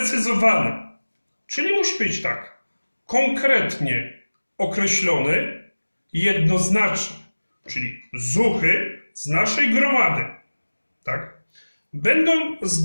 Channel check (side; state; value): both; inverted; correlation -1.00